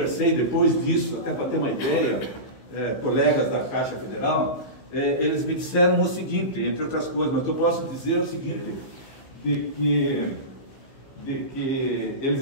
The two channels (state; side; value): late; right; 15 ms